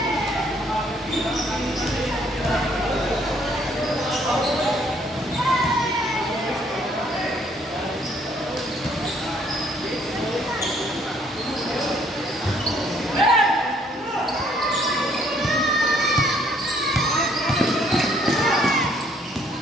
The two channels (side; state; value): both; normal; correlation 0.64